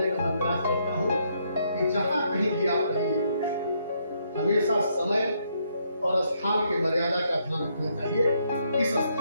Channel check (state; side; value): inverted; both; correlation -0.74